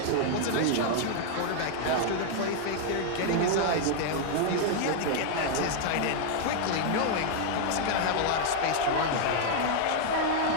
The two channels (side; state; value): both; different; correlation 0.00